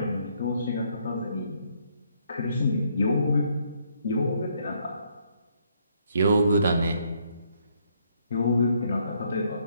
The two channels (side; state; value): both; inverted; correlation -0.70